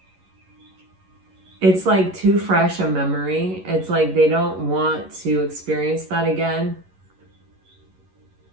It's like too fresh a memory. It's like they don't want to experience that again.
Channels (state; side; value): late; left; 11 ms